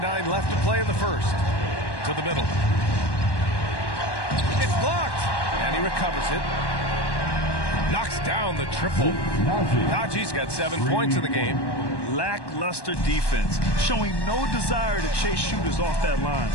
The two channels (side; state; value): right; late; 1.1 ms